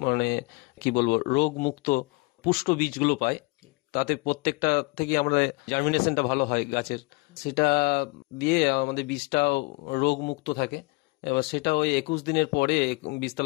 কি বলবো, রোগ মুক্ত পুষ্ট বীজগুলো পাই। তাতে প্রত্যেকটা থেকে আমরা জার্মিনেশনটা ভালো হয় গাছের, সেটা দিয়ে আমাদের বীজটাও রোগ মুক্ত থাকে। এবার সেটা ওই 21 দিনের পরে,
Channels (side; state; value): right; quieter; 26.4 dB